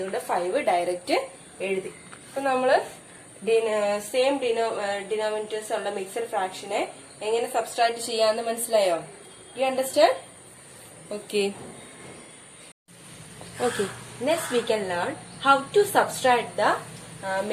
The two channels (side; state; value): both; identical; correlation 1.00